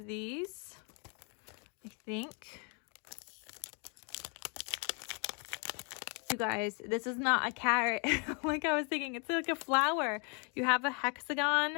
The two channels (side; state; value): right; quieter; 36.4 dB